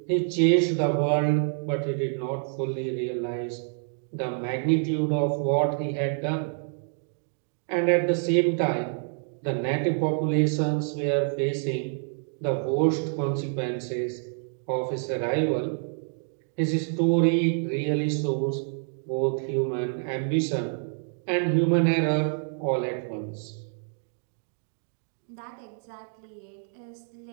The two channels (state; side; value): silent; left; 58 dB below the other